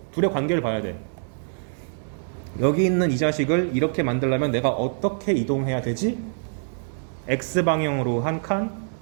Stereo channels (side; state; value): left; silent; 60 dB below the other